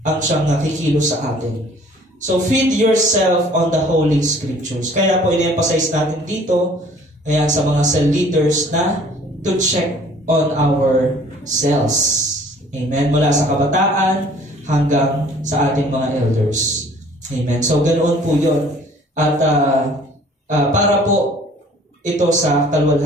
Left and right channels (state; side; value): normal; both; correlation 0.53